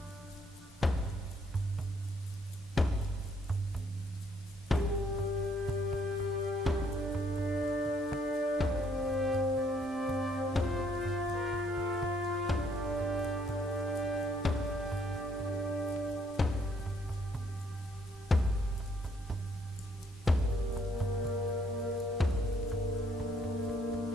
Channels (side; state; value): both; normal; correlation 0.68